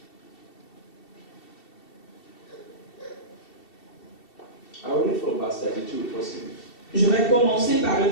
I will read from verse 32 if possible. Je vais commencer par le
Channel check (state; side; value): late; right; 2.7 ms